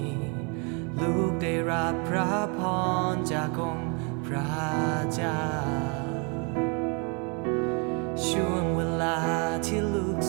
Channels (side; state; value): left; quieter; 34.4 dB